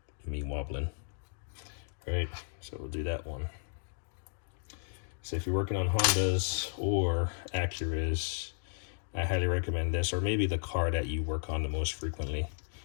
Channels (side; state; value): right; silent; digital silence